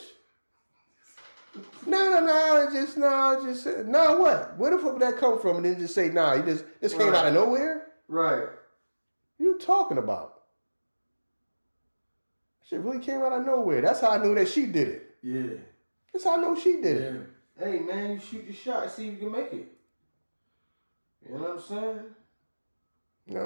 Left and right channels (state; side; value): inverted; both; correlation -1.00